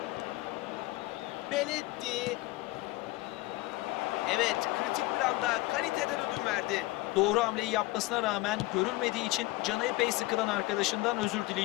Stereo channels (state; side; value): quieter; right; 19.5 dB